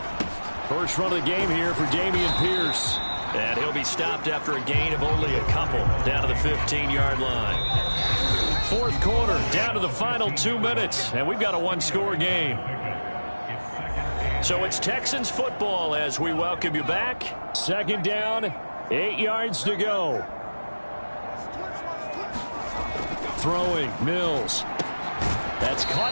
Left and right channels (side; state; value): both; inverted; correlation -1.00